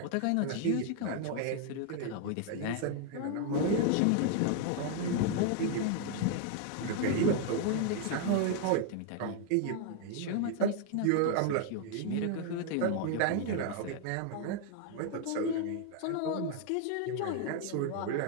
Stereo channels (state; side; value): different; both; correlation 0.00